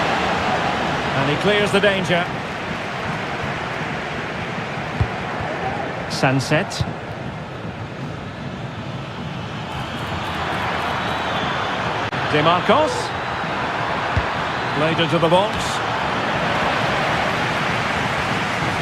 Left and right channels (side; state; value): both; identical; correlation 1.00